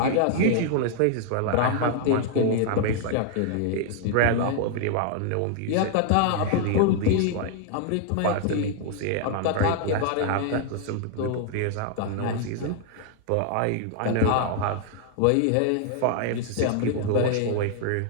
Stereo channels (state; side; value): different; both; correlation 0.00